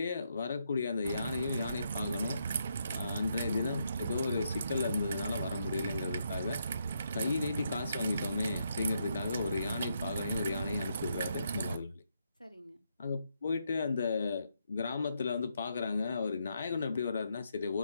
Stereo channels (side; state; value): both; inverted; correlation -0.78